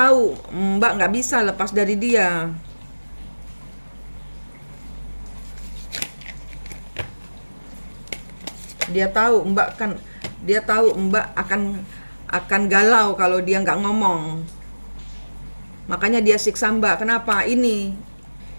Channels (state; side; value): inverted; both; correlation -1.00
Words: Mbak nggak bisa lepas dari dia. Dia tahu Mbak akan galau kalau dia nggak ngomong. Makanya dia siksa Mbak. Kenapa? Ini